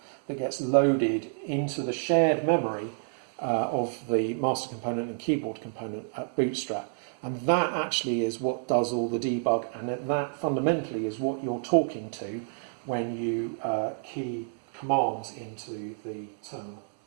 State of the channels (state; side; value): silent; left; 56 dB below the other